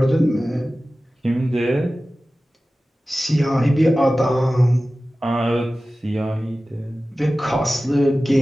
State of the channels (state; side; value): normal; both; correlation 0.96